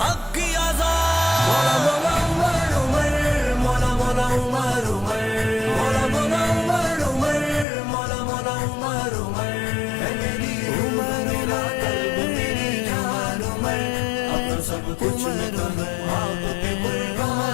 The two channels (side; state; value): right; drops out; at 7.7 s